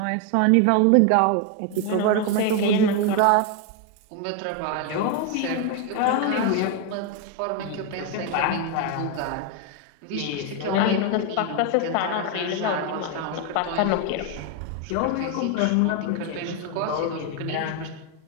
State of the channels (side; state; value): both; different; correlation 0.01